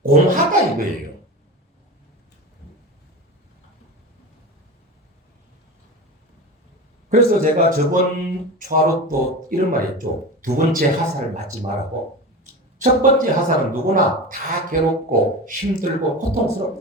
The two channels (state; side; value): normal; both; correlation 0.28